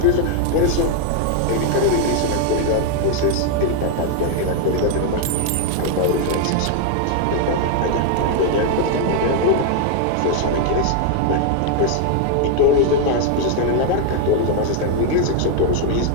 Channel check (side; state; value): both; different; correlation 0.00